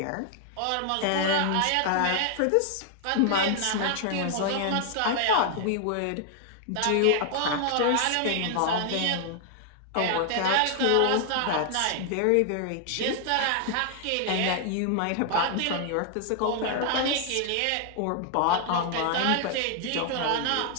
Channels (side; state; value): both; different; correlation 0.00